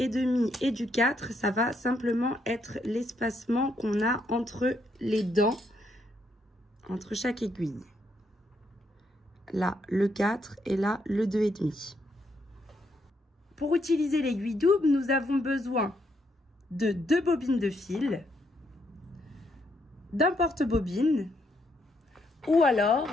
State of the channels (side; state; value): both; normal; correlation 0.76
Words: et du 4, ça va simplement être l'espacement qu'on a entre les dents. Entre chaque aiguille. Là, le 4 et là, le 2,5. Pour utiliser l'aiguille double, nous avons besoin de 2 bobines de fil, d'un porte-bobine ou alors